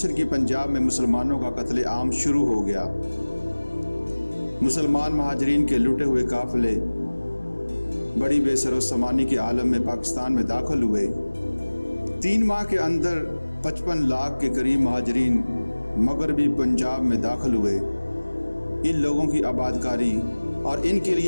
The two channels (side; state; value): both; inverted; correlation -1.00